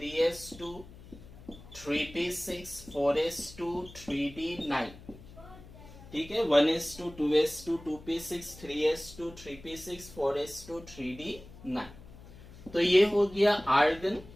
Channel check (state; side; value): noise; left; hum, 18 dB below the sound